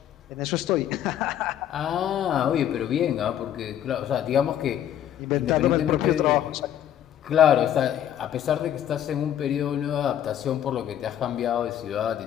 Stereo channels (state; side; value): quieter; right; 10.7 dB